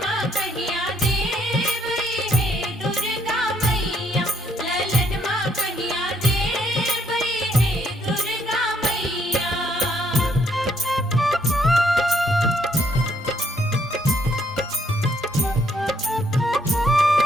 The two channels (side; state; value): both; normal; correlation 0.71